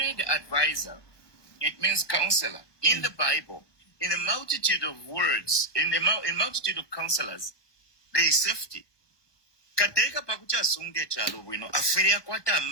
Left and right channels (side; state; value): right; late; 1.2 ms